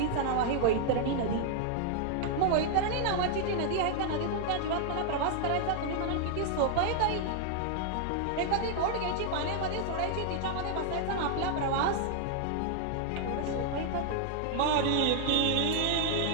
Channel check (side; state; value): both; different; correlation 0.00